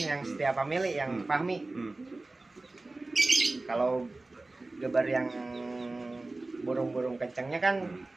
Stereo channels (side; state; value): left; quieter; 3.1 dB